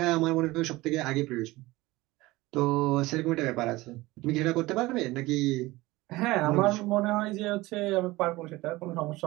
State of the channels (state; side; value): quieter; left; 19.8 dB